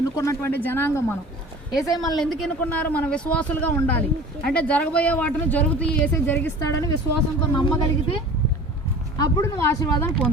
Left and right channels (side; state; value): both; normal; correlation 0.41